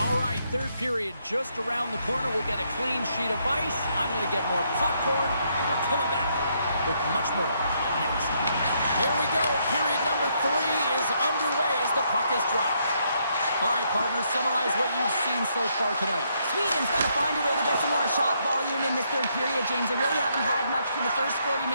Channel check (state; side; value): inverted; both; correlation -0.74